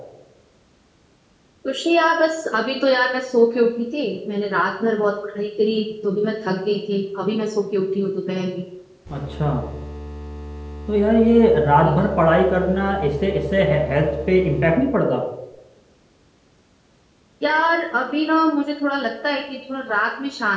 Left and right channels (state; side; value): identical; both; correlation 1.00